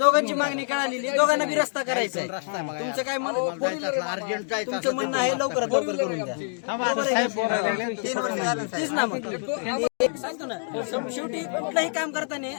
मागणी कळालेली, दोघांना बी रस्ता करायचा आहे. तुमचं काय तुमचं म्हणणं आहे लवकरात लवकर करून द्या. तेच ना मग सांगतो ना. शेवटी कुठलंही काम करताना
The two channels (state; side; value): silent; right; digital silence